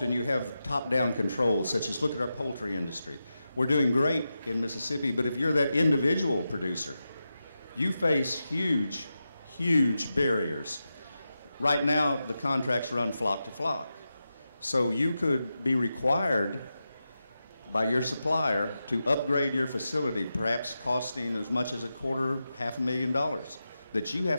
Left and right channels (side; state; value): both; inverted; correlation -0.90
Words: you have top-down controls, such as look at our poultry industry. We're doing great in Mississippi, but if you're that individual producer, you face huge, huge barriers. Right now, the contracts run flock to flock. So you could be required by your supplier to upgrade your facility, perhaps costing as much as $250,000, that you